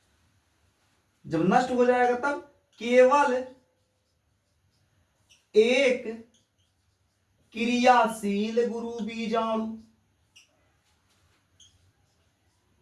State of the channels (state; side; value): identical; both; correlation 1.00